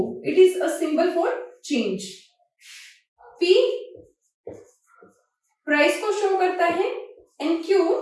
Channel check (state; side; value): identical; both; correlation 1.00